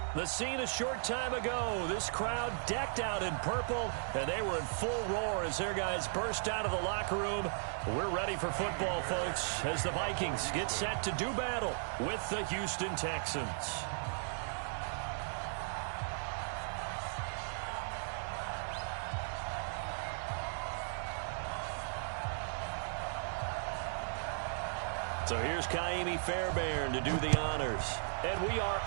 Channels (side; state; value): left; silent; digital silence